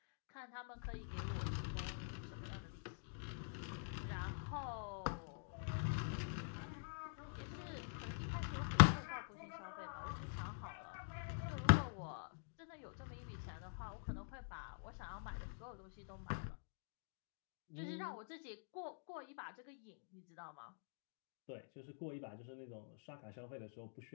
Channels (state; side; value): silent; right; digital silence